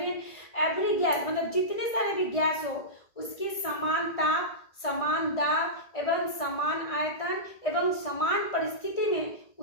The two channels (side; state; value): right; late; 1.6 ms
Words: गैस, मतलब जितने सारे भी गैस हो, उसकी समान ताप, समान दाब एवं समान आयतन एवं समान परिस्थिति में